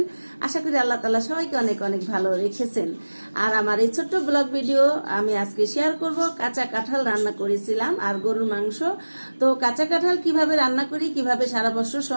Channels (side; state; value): both; inverted; correlation -1.00